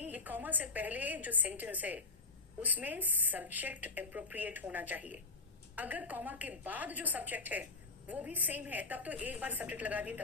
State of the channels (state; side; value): quieter; right; 3.6 dB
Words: ये कॉमा से पहले जो सेंटेंस है उसमें सब्जेक्ट अप्रोप्रिएट होना चाहिए। अगर कॉमा के बाद जो सब्जेक्ट है वो भी सेम है, तब तो एक बार सब्जेक्ट लगा दिए